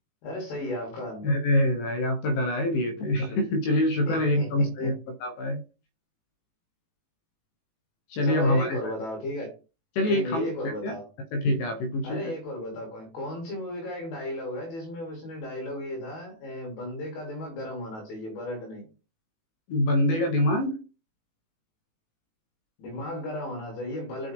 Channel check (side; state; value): right; late; 18 ms